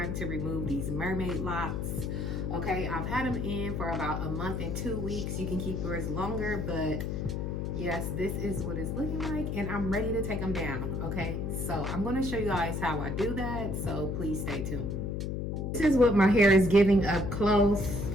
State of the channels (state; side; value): noise; left; hum, 2 dB below the sound